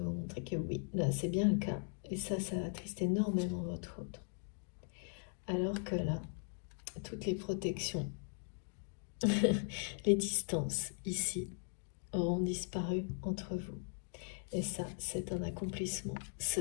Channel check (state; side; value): silent; right; 52 dB below the other